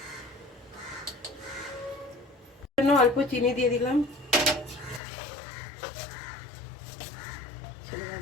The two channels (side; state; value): right; drops out; at 5.0 s